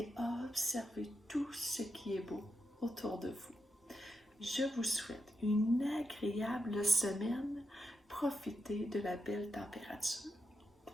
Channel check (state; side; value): normal; both; correlation 0.85